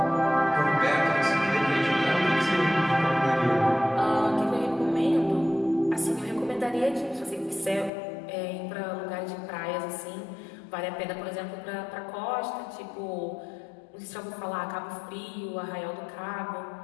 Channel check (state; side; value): drops out; right; at 7.9 s